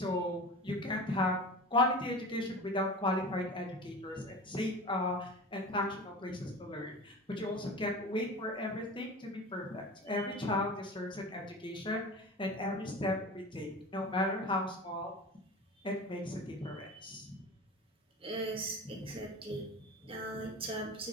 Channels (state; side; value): normal; both; correlation 0.33